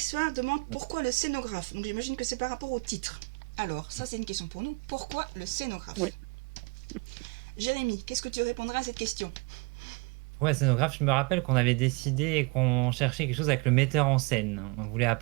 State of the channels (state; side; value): quieter; left; 28.9 dB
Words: demande pourquoi le scénographe. Donc, j'imagine que c'est par rapport au titre. Alors, ça c'est une question pour nous. Pourquoi le scénographe? Oui. Jérémy, qu'est-ce que tu répondras à cette question? Ouais, scénographe, je me rappelle qu'on avait décidé qu'on cherchait quelque chose avec le metteur en scène. On voulait